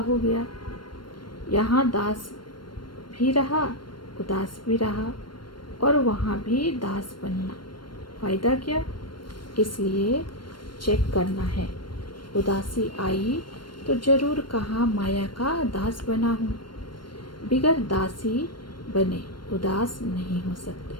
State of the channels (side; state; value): right; late; 0.72 ms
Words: गया। यहाँ दास भी रहा, उदास भी रहा, और वहाँ भी दास बनना, फायदा क्या? इसलिए चेक करना है। उदासी आई तो जरूर कहाँ माया का दास बना हूँ। बिगर दासी बने उदास नहीं हो सकते।